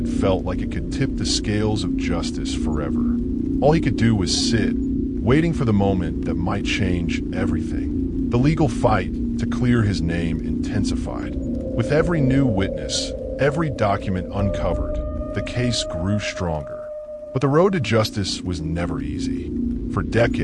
felt like it could tip the scales of justice forever. All he could do was sit, waiting for the moment that might change everything. The legal fight to clear his name intensified. With every new witness, every document uncovered, the case grew stronger. But the road to justice was never easy. For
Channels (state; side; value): identical; both; correlation 1.00